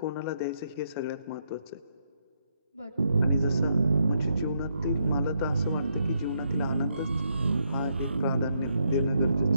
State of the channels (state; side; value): inverted; both; correlation -0.77